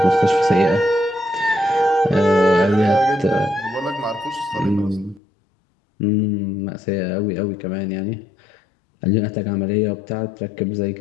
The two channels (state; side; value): drops out; right; at 5.2 s